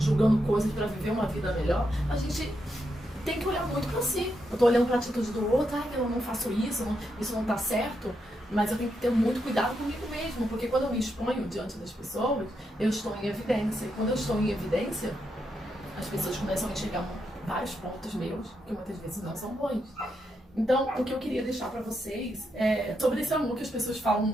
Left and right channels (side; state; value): both; normal; correlation 0.82